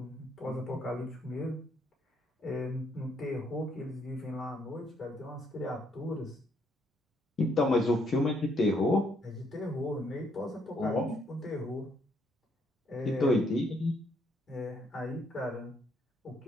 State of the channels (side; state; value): both; normal; correlation 0.71